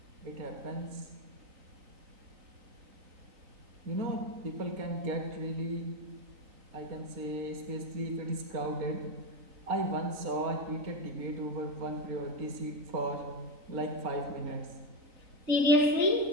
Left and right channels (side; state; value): left; late; 3.9 ms